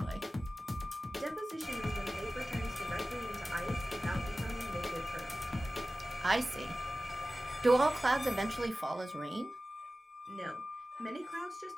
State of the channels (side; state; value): both; normal; correlation 0.96